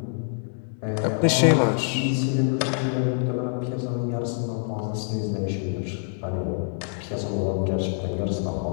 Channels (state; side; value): silent; right; 61 dB below the other